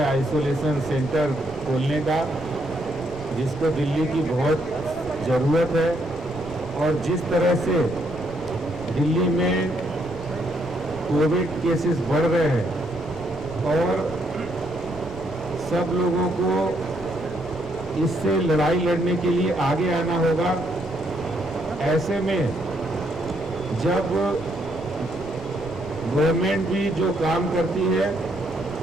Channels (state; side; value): noise; left; rumble, 16 dB below the sound